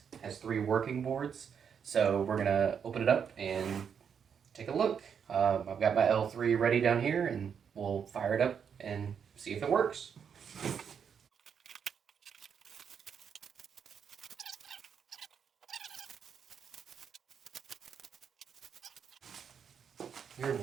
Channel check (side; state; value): left; quieter; 7.3 dB